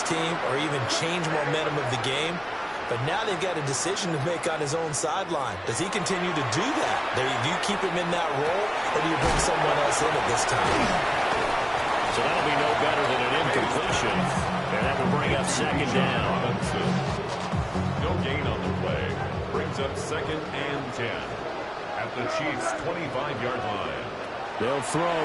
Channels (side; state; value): both; identical; correlation 1.00